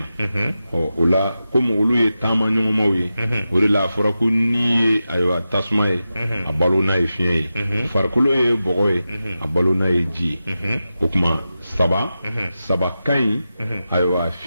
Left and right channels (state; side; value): inverted; both; correlation -0.92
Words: o la komi olu ye taama ɲɔgɔnmaw ye o de la a fɔra ko n'i ye ayiwa tasuma ye a balo n'a ye fiɲɛ ye farikolo ye bɔgɔ ye a balo n'a ye ji ye o tuma saba ka ɲi ayiwa